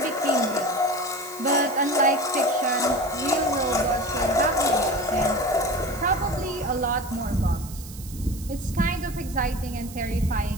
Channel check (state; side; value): noise; right; hiss, 16 dB below the sound